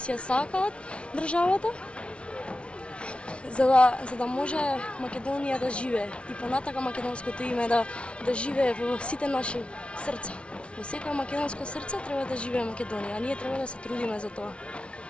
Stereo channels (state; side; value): late; right; 0.060 ms